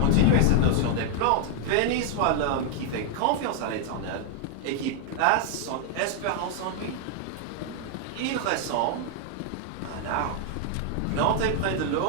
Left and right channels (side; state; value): both; different; correlation 0.00